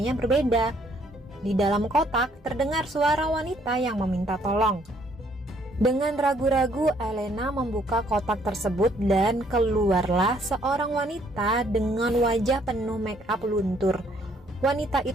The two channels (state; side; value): normal; both; correlation 0.66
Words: berbeda. Di dalam kotak terdengar suara wanita yang meminta tolong. Dengan ragu-ragu, Elena membuka kotak tersebut dan keluarlah seorang wanita dengan wajah penuh make up luntur. Wanita